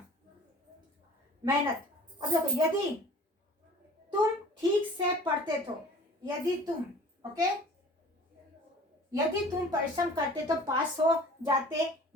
मेहनत। अब देखो, यदि तुम ठीक से पढ़ते तो, यदि तुम, ओके, यदि तुम परिश्रम करते तो पास हो जाते,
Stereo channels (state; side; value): normal; both; correlation 0.46